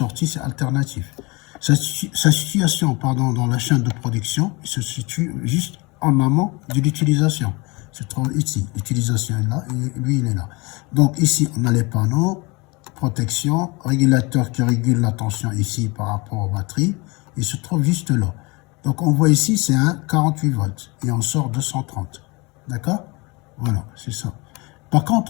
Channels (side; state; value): right; quieter; 26.3 dB